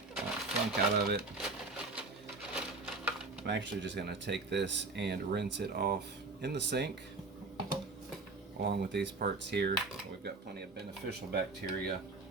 that funk out of it. I'm actually just going to take this and rinse it off in the sink along with these parts here. We've got plenty of beneficial bacteria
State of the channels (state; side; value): quieter; left; 3.5 dB